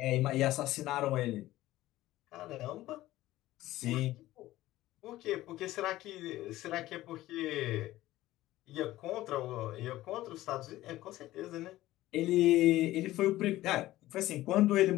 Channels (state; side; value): quieter; right; 16.0 dB